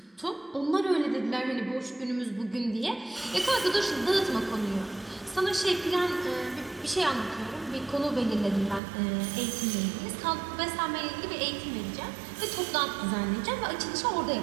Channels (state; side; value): drops out; left; at 8.8 s